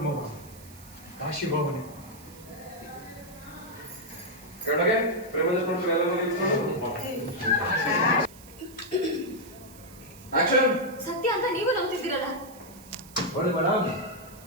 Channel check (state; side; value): noise; right; hiss, 21 dB below the sound